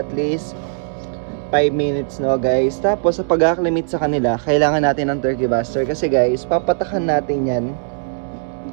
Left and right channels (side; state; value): left; silent; digital silence